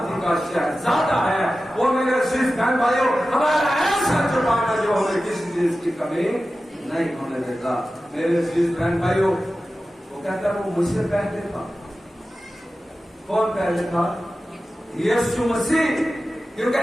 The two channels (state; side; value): normal; both; correlation 0.94